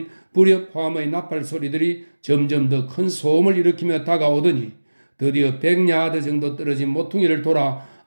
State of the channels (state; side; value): inverted; both; correlation -1.00